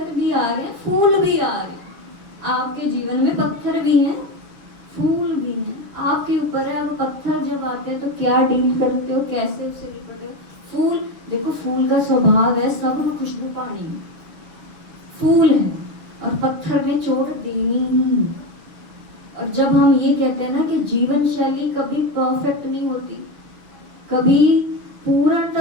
भी आ रहे हैं, फूल भी आ रहे हैं। आपके जीवन में पत्थर भी हैं, फूल भी हैं, आपके ऊपर है। अब पत्थर जब आते हैं तो क्या डील करते हो, कैसे उससे निपटते हो। फूल देखो, फूल का स्वभाव है सब में खुशबू पानी, फूल है, और पत्थर में चोट देनी ही। और जब हम ये कहते हैं ना कि जीवन शैली कभी परफेक्ट नहीं होती, कभी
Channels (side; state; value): left; late; 6.9 ms